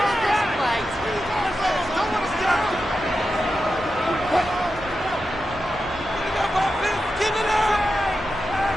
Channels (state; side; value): normal; both; correlation 0.90